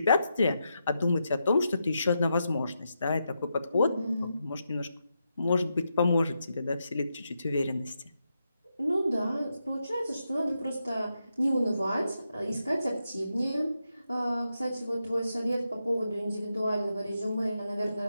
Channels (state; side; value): inverted; both; correlation -0.85